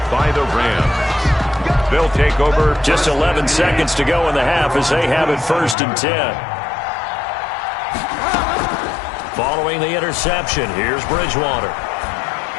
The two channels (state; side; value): drops out; right; at 5.8 s